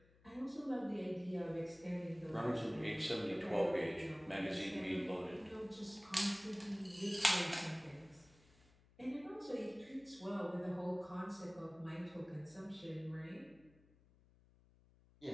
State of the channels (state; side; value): noise; left; hum, 28 dB below the sound